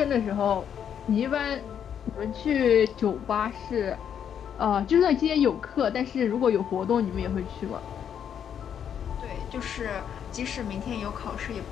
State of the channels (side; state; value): right; quieter; 8.6 dB